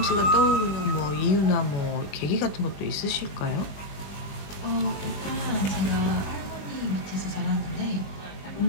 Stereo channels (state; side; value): late; right; 20 ms